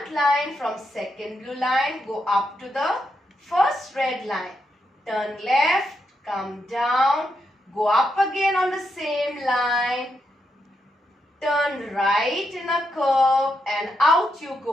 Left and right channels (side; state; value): both; normal; correlation 0.82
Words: line from second blue line, go up to the first red line, turn left, come down, go up again on the same line, turn right in a curve and out you